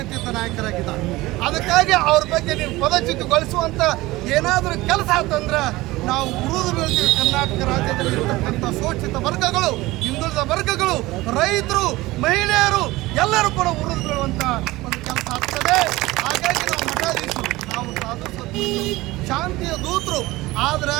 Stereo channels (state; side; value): quieter; left; 19.4 dB